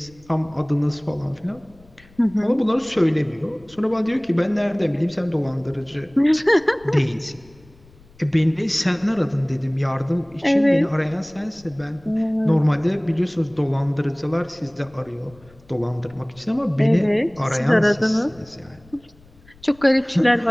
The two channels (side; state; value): left; noise; rumble, 26 dB below the sound